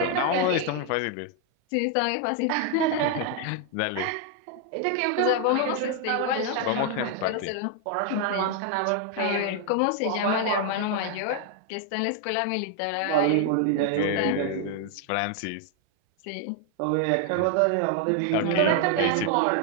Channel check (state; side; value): different; both; correlation 0.00